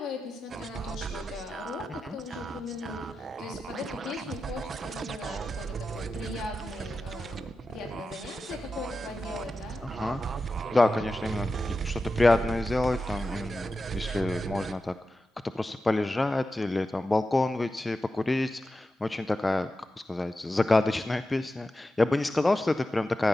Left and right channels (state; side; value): normal; both; correlation 0.91